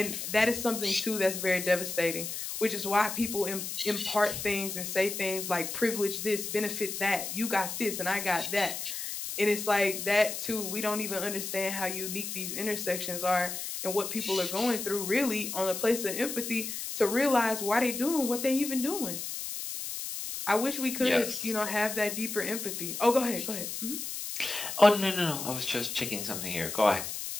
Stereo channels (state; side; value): noise; left; hiss, 5 dB below the sound